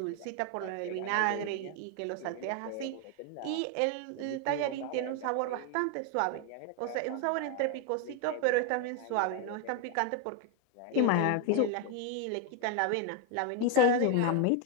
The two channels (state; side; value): different; both; correlation 0.01